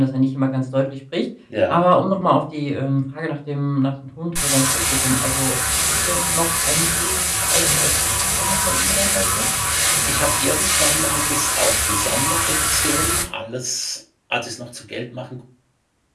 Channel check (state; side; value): identical; both; correlation 1.00